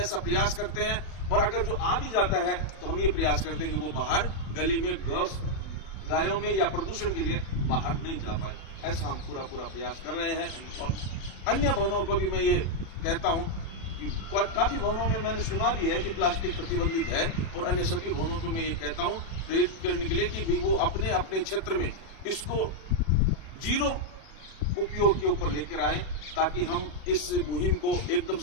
प्रयास करते हैं। और अगर जो आ भी जाता है तो हम ये प्रयास करते हैं कि वो बाहर गली में गायों में या प्रदूषण के लिए बाहर नहीं जा पाए। ऐसा हम पूरा प्रयास कर रहे हैं। और अन्य भवनों को भी मैं ये कहता हूं कि काफी भवनों में मैंने सुना भी है कि प्लास्टिक प्रतिबंधित है, और अन्य सभी भवनों को मैं ये कहता हूं प्रेरित करने के लिए कि भी वो अपने अपने क्षेत्र में इसको जीरो उपयोग के ऊपर लेकर आए, ताकि हम इस मुहिम को एकदम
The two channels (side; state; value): right; late; 37 ms